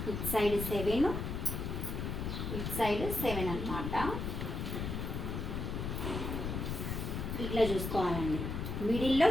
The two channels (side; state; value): left; noise; rumble, 3 dB below the sound